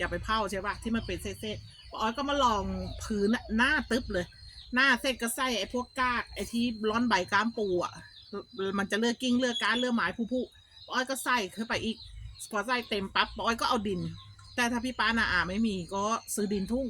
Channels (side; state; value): both; identical; correlation 1.00